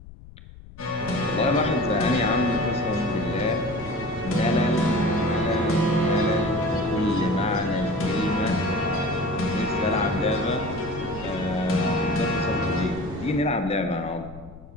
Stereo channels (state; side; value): noise; left; rumble, 18 dB below the sound